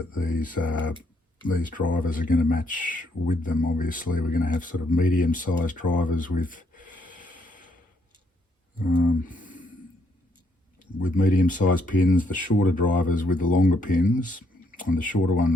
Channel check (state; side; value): normal; both; correlation 0.72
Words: these drivers are going to match with them. Obviously, we're going to have sort of medium-sized drivers with medium-sized pins, the shorter drivers with the longer pins, and the shorter